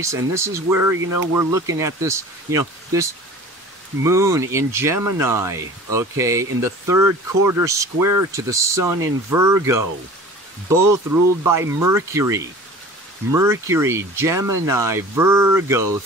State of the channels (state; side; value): normal; both; correlation 0.42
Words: and this is where, you know, we're looking at this, you know, this moon in Gemini, okay, in the third quarter square to the sun in Virgo, both ruled by Mercury. Mercury, Gemini, Virgo,